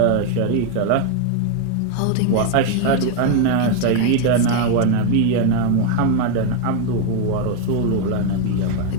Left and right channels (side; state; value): both; different; correlation 0.01